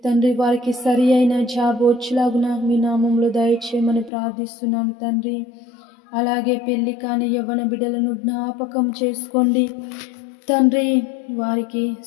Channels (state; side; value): drops out; right; at 4.1 s